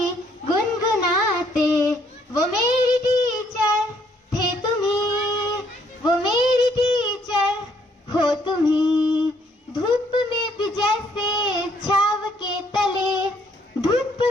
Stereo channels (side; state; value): both; normal; correlation 0.67